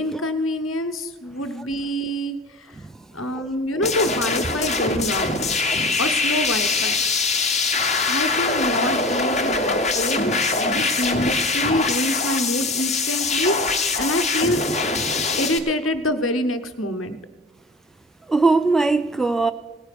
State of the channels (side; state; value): both; normal; correlation 0.37